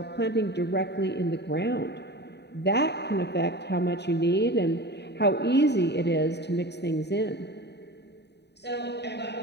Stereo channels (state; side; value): late; right; 0.49 ms